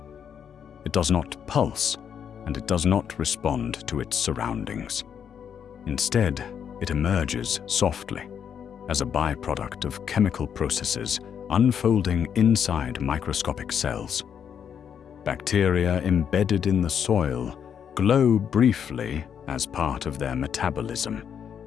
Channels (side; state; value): right; quieter; 8.0 dB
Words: It does not pulse, and it does not respond to its surroundings. Instead, It emerges softly as a byproduct of chemical processes unfolding inside microscopic cells. Bacteria embedded in the soil glow briefly as part of their metabolism,